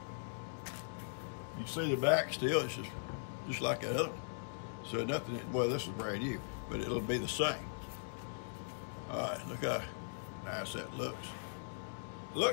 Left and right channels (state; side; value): silent; right; digital silence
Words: You see the back still, it's just like that other. So nothing, well, this is brand new, but it'll be the same. All right, look how nice that looks.